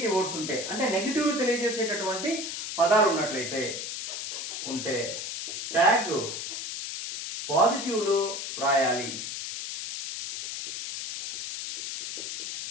వర్డ్స్ ఉంటే, అంటే నెగటివ్ తెలియజేసేటటువంటి పదాలు ఉన్నట్లయితే ఉంటే ట్యాగ్ పాజిటివ్లో రాయాలి.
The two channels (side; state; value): left; noise; hiss, 6 dB below the sound